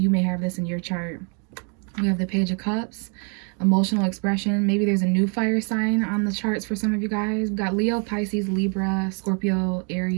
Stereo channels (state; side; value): quieter; left; 38.0 dB